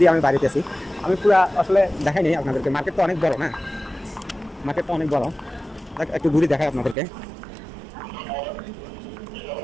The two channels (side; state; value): left; drops out; at 7.0 s